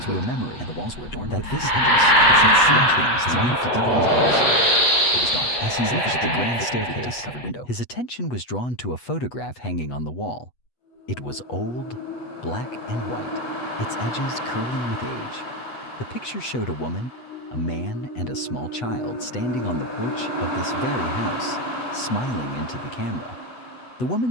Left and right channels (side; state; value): right; late; 8.2 ms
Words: a memory, and the walls were adorned that with this house had seen things long deeper into the house. It was dark. As he reached the grand staircase, dust-covered window. his attention was drawn to a photograph hanging on the wall. It was old, black and white, its edges curling with age. The picture showed a woman, a man, and a small child standing on the porch of this very house, smiling into the camera. The